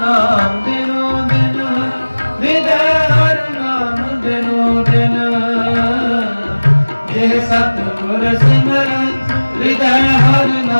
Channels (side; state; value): both; inverted; correlation -1.00